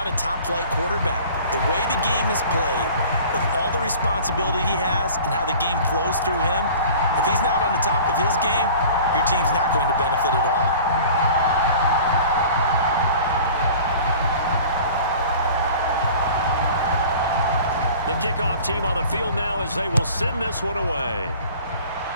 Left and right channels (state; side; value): inverted; both; correlation -0.44